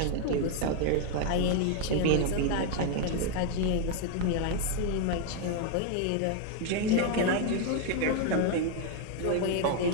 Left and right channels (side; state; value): both; different; correlation 0.01